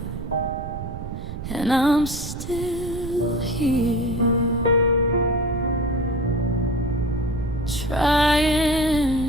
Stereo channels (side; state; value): right; noise; rumble, 8 dB below the sound